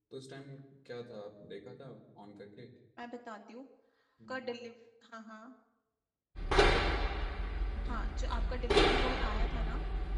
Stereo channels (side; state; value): both; identical; correlation 1.00